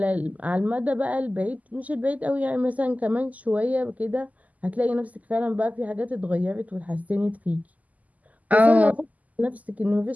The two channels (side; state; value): left; late; 0.077 ms